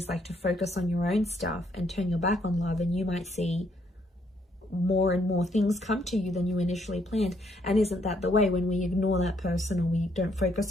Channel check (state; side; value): normal; both; correlation 0.71